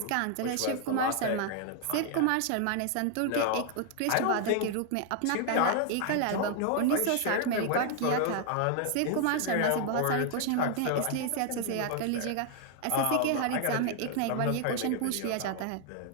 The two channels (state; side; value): different; both; correlation 0.00